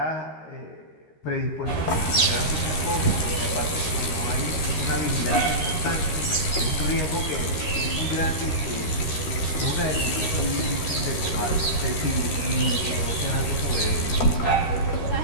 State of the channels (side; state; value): right; late; 13 ms